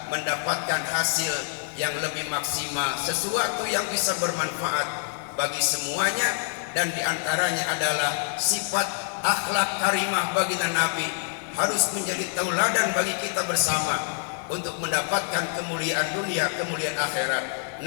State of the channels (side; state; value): right; silent; digital silence